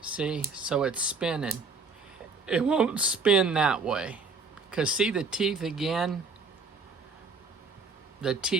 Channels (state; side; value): quieter; left; 4.4 dB